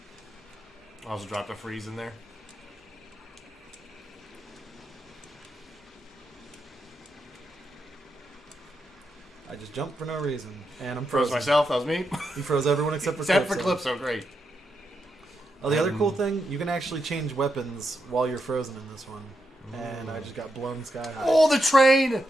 I also dropped a freeze in there. I just jumped for no reason, and I'm Froze frozen. myself. That was me. You froze everyone except for Except Calypso. for Calypso. Great. Oh, the other cool thing, you can actually change weapons while you're frozen in this one. And I just got blown sky high. Oh, the train!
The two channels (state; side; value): normal; both; correlation 0.84